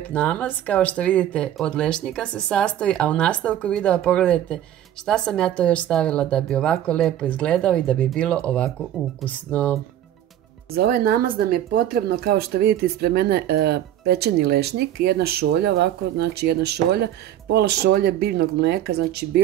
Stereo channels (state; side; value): quieter; left; 11.7 dB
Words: namaz. Kao što vidite, od lešnika se sastoji, a u nastavku videa pogledajte šta sam ja to još stavila da bi ovako lepo izgledao i da bi bilo ovako ukusno. Za ovaj namaz nam je potrebno, kao što vidite ispred mene, pečeni lešnik, jedna šolja ovako, znači jedna šolja, pola šolje biljnog mlijeka, znači